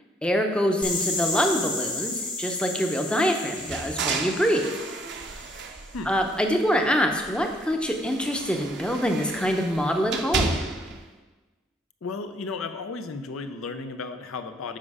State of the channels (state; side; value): normal; both; correlation 0.67